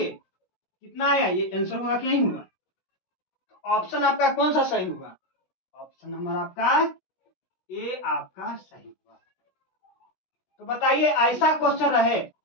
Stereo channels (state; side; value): late; right; 16 ms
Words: कितना आया, ये आंसर होगा कि नहीं होगा, ऑप्शन आपका कौन सा सही होगा, ऑप्शन नंबर आपका ए आपका सही होगा। तो बताइए ऐसा क्वेश्चन रहे